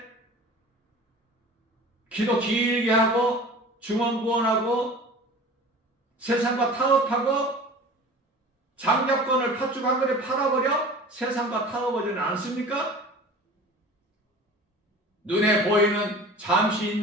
기도 길게 하고 중언부언하고 세상과 타협하고 장자권을 팥죽 한 그릇 팔아버려 세상과 타협하지는 않습니까? 눈에 보이는 잠시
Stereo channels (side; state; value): both; normal; correlation 0.40